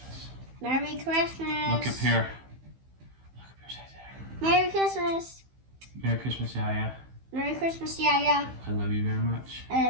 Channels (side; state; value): left; late; 15 ms